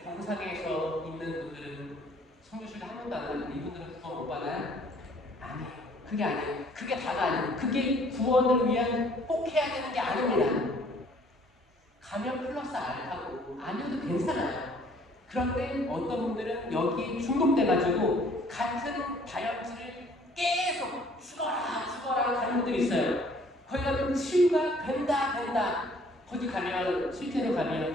병상에서 있는 분들은 성교실에 한 번도 안 가는데 이분들은 구원 못 받아요? 아니에요. 그게 아니에요. 그게 다가 아니에요. 그게 구원을 위한 꼭 해야 되는 게 아닙니다. 가면 플러스 알파고 아니어도 괜찮아요. 그런데 어떤 분들은 여기에 중독돼가지고 같은 다혈질을 계속 죽어라 가는 분들이 있어요. 거기 가면 치유가 된다. 거기 가면 실제로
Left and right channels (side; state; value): both; normal; correlation 0.58